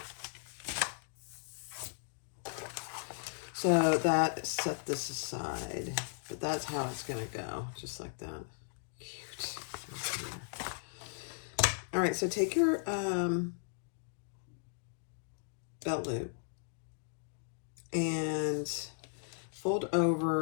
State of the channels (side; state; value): right; silent; digital silence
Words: So that, set this aside. But that's how it's going to go. Just like that. Cute. All right, so take your belt loop and fold